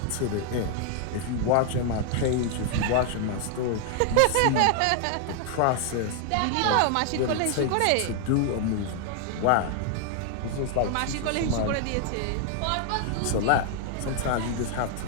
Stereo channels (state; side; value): different; both; correlation 0.00